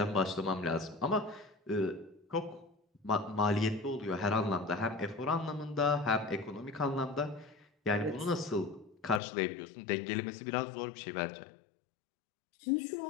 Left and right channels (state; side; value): drops out; right; at 9.2 s